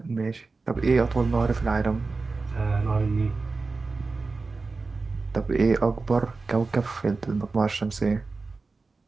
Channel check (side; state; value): left; quieter; 3.9 dB